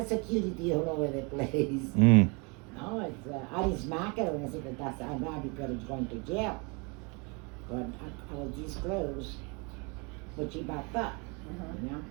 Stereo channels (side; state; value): left; quieter; 31.0 dB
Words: security all over the place. Mm. No, it's, I didn't smack her and I said, that's not because it's going to jail. But I was this close. But she backed up, you know?